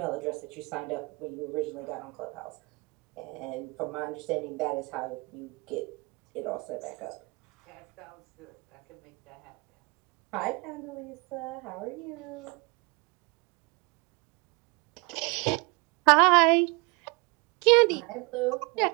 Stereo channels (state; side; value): quieter; left; 29.2 dB